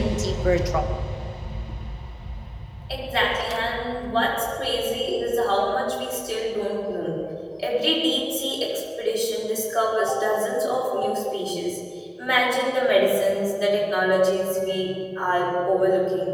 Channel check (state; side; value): identical; both; correlation 1.00